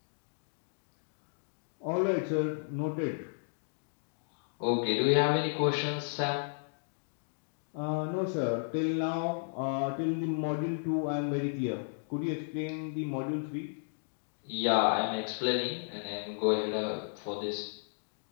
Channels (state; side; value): silent; right; digital silence